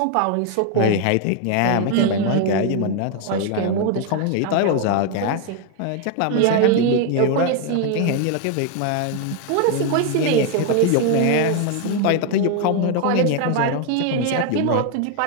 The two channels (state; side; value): different; both; correlation 0.01